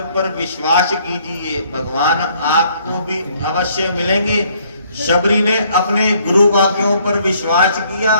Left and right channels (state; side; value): inverted; both; correlation -0.64